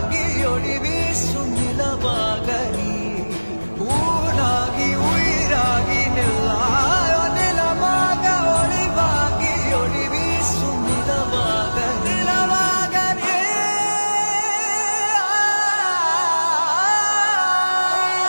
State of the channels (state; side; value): inverted; both; correlation -1.00